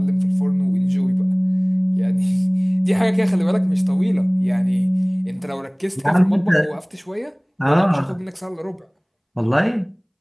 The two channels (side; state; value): both; identical; correlation 1.00